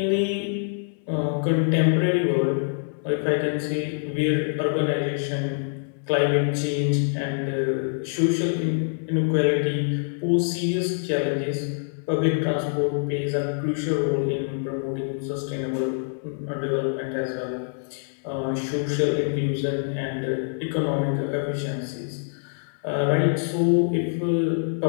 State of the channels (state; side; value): silent; right; 62 dB below the other